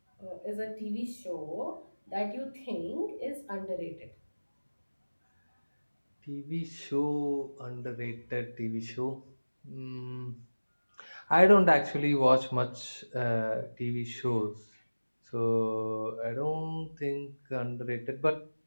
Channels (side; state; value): both; inverted; correlation -1.00